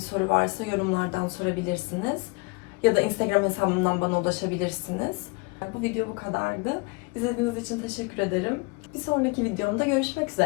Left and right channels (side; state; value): right; quieter; 27.2 dB